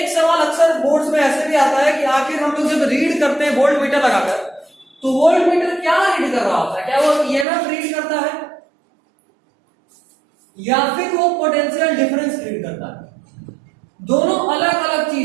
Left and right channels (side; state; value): left; drops out; at 7.5 s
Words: सवाल अक्सर बोर्ड्स में ऐसे भी आता है कि आखिर हम लोग जब रीड करते हैं वोल्ट मीटर लगाकर, तो वोल्ट मीटर क्या रीड कर रहा होता है? क्या वो ईएमएफ रीड करता है या फिर वो पोटेंशियल डिफरेंस रीड करता है? दोनों अलग अलग